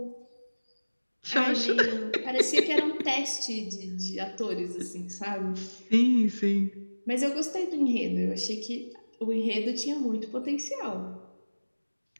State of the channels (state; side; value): inverted; both; correlation -1.00